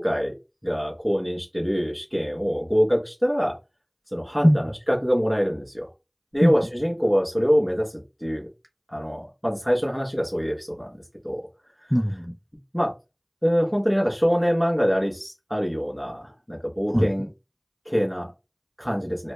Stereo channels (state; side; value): identical; both; correlation 1.00